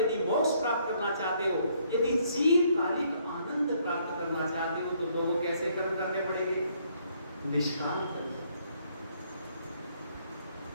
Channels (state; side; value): inverted; both; correlation -0.68